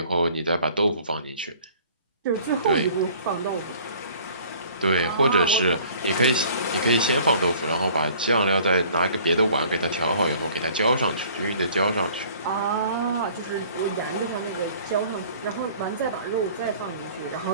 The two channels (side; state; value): both; inverted; correlation -0.52